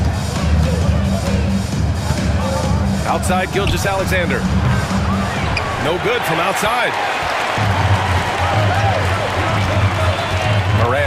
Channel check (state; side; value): identical; both; correlation 1.00